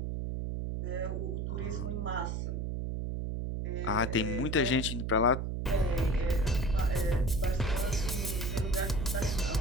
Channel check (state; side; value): noise; right; hum, 2 dB below the sound